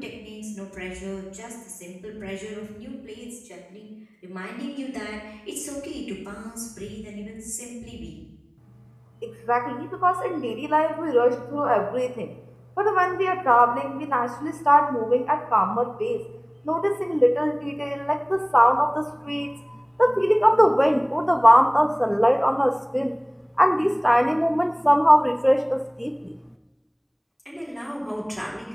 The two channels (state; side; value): identical; both; correlation 1.00